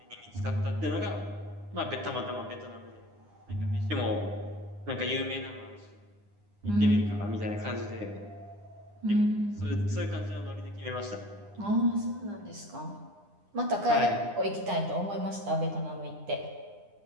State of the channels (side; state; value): left; late; 9.8 ms